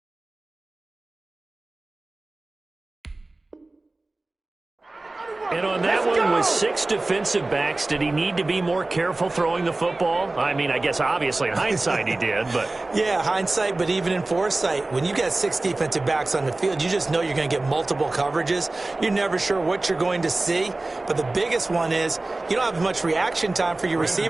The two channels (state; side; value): quieter; left; 3.0 dB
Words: And on that one, with 6 defensive backs, did he need to be more careful throwing the football? I mean, I guess obviously in hindsight he did, but... Yeah, hindsight, but even in foresight, when you got 6 defensive backs on the field, you just know you're going to get multiple coverages. You're never sure what you're going to see. But the biggest one is you don't have much reaction time for your